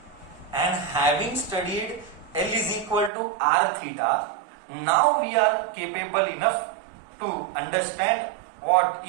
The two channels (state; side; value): drops out; left; at 3.1 s